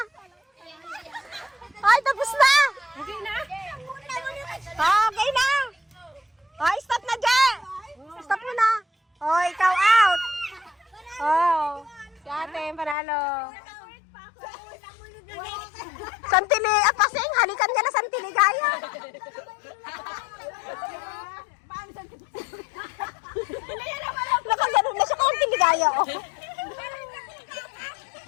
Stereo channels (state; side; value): drops out; right; at 13.0 s